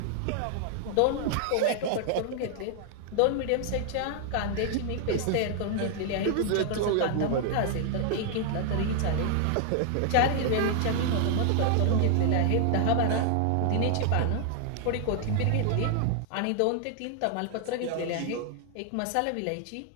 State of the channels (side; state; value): both; different; correlation 0.00